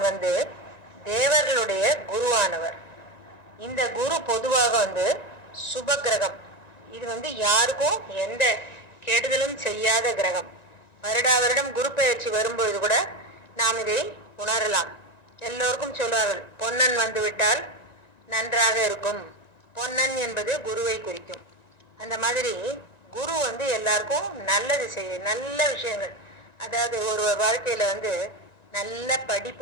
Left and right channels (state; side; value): late; right; 1.9 ms